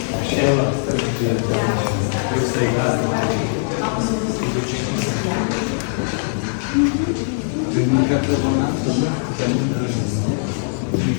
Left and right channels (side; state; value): right; silent; digital silence